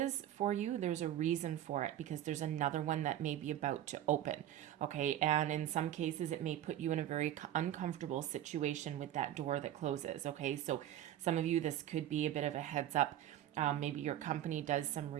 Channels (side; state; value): left; quieter; 12.0 dB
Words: for you, there's a reason for it, because there's another one that may be about to open. Okay. And in some cases, it may put you in a very uncomfortable situation with that door that closes. Okay. So some of you, this could be a bit of a heads up. Maybe your company does some